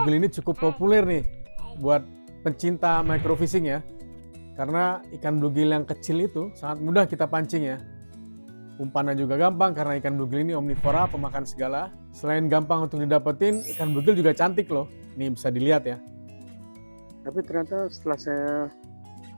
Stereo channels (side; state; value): both; inverted; correlation -1.00